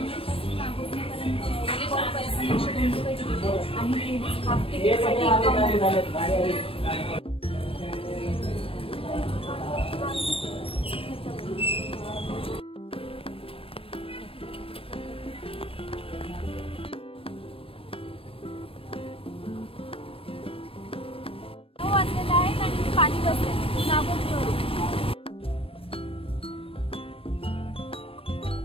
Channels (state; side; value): late; right; 0.27 ms